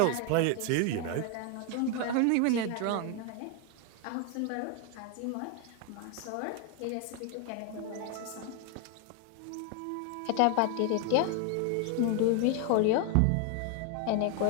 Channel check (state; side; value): different; both; correlation 0.01